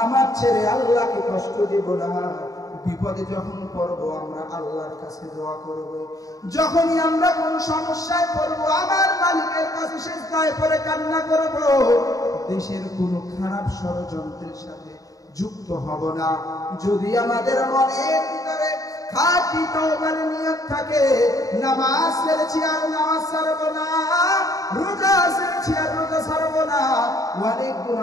ছেড়ে আল্লাহকে কষ্ট দিব না। বিপদে যখন পড়ব আমরা আল্লাহর কাছে দোয়া করব। যখনই আমরা কোন সমস্যায় পড়ব আমার মালিকের কাছে সিজদায় পড়ে কান্না করব। দেশের কোনো খারাপ ষড়যন্ত্রের সাথে যুক্ত হব না। যদি আমাদের মনের ভিতরে খাঁটি তওবার নিয়ত থাকে, নামাজ ছেড়েছি আর নামাজ ছাড়ব না, রোজা ছেড়েছি আর রোজা ছাড়ব না, অনেক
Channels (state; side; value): late; right; 0.17 ms